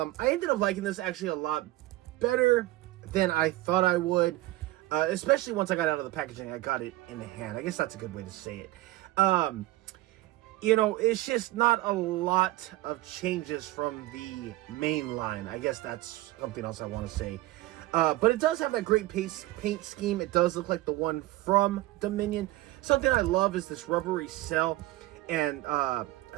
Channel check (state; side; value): quieter; left; 17.7 dB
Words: ended up liking this actually a lot better than I thought I would, especially once I got out of the packaging. I got it in the hand. I guess that's a good way to say it. You know, it's just not a lot of changes from the main line. I guess that's something else I want to say. But it does have that great paint scheme. It does look like the one from Dominion. Something I love is this rubbery cell, and